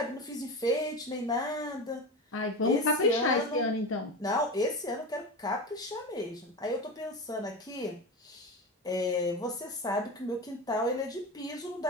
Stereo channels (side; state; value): both; normal; correlation 0.24